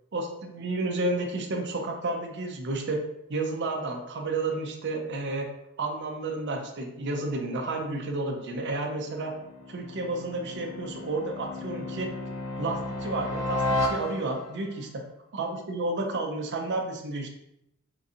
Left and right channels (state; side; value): normal; both; correlation 0.14